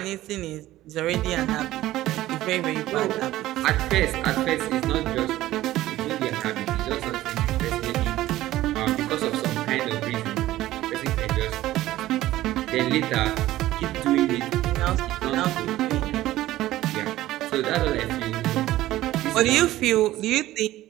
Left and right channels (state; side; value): quieter; left; 15.4 dB